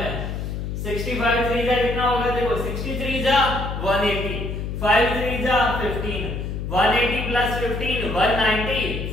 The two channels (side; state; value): left; noise; hum, 4 dB below the sound